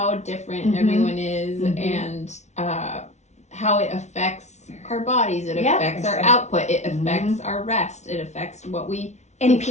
different everyone is, and how it affects our bodies. It affects our output. It affects our rest. It affects what we. And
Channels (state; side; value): late; right; 0.33 ms